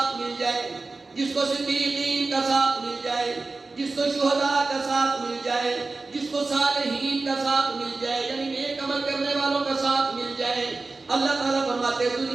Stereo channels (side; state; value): left; quieter; 3.7 dB